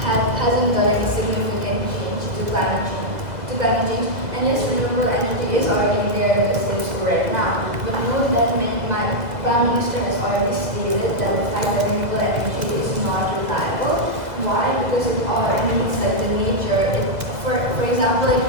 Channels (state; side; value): late; left; 2.1 ms